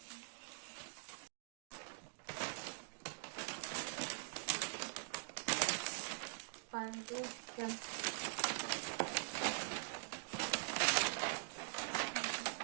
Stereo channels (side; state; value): left; silent; digital silence